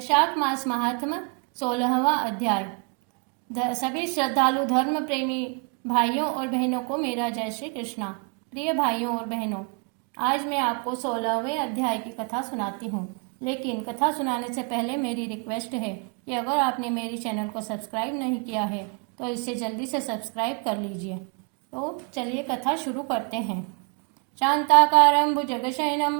वैशाख मास महात्म 16वां अध्याय। सभी श्रद्धालु धर्म प्रेमी भाइयों और बहनों को मेरा जय श्री कृष्णा। प्रिय भाइयों और बहनों, आज मैं आपको 16वें अध्याय की कथा सुनाती हूँ। लेकिन कथा सुनाने से पहले मेरी रिक्वेस्ट है कि अगर आपने मेरी चैनल को सब्सक्राइब नहीं किया है तो इसे जल्दी से सब्सक्राइब कर लीजिए। तो चलिए कथा शुरू करते हैं। शांताकारं भुजगशयनं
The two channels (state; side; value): quieter; left; 36.9 dB